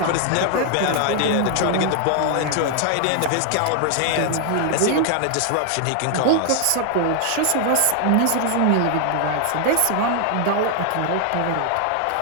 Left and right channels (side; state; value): both; different; correlation 0.00